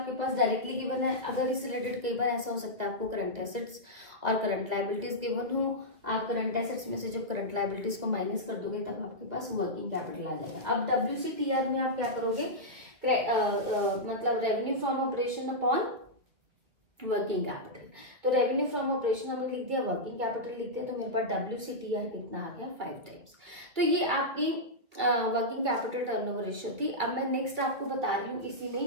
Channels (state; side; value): late; left; 1.9 ms